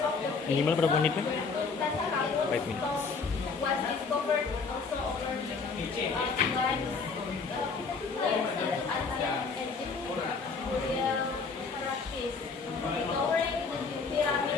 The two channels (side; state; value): right; quieter; 4.7 dB